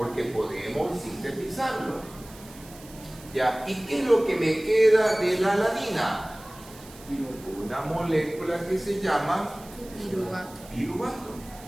podemos sintetizarlo. ¿Ya? ¿Y qué es lo que me queda de la alanina? Una molécula que se llama piruvato.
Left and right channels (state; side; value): noise; right; hiss, 20 dB below the sound